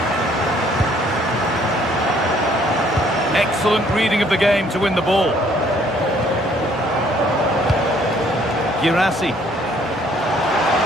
Excellent reading of the game to win the ball. Girassi.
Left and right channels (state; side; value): normal; both; correlation 0.62